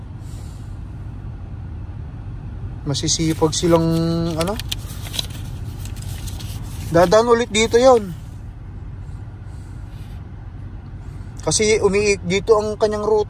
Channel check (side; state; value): both; identical; correlation 1.00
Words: Masisipag silang ano. Dadaan ulit dito yon. Kasi dito ang kanyang